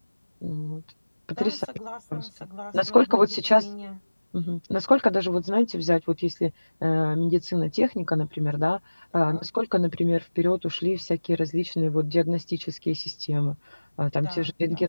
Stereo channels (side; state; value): both; inverted; correlation -1.00